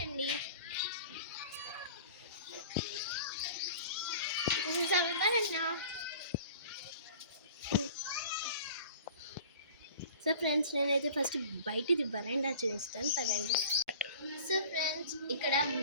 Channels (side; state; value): both; inverted; correlation -0.45